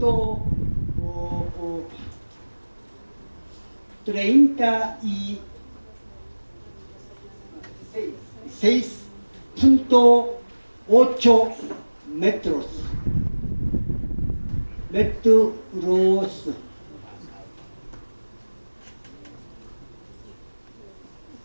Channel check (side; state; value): both; inverted; correlation -1.00